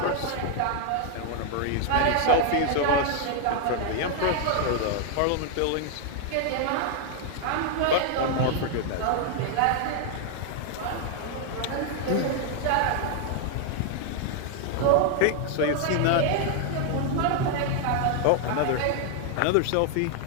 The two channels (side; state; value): both; different; correlation 0.00